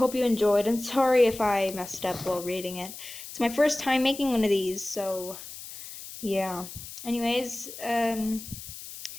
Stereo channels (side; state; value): left; noise; hiss, 13 dB below the sound